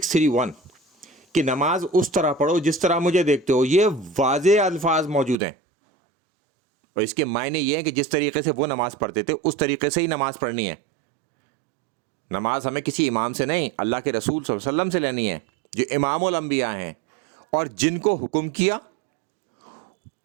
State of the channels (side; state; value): left; drops out; at 5.4 s